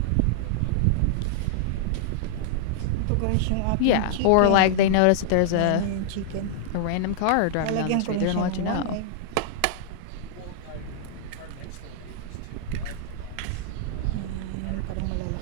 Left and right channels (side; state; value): both; different; correlation -0.01